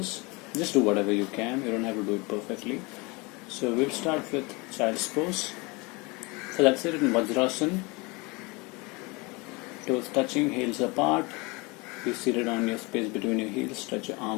Just do whatever you can. You don't have to do it perfectly. So we'll start with child's pose. So that's it in Vajrasana. Toes touching, heels apart. Be seated on your space between your heels. Stretch your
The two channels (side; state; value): right; quieter; 26.4 dB